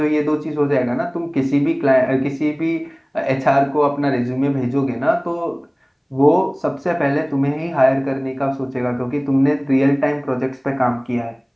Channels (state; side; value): identical; both; correlation 1.00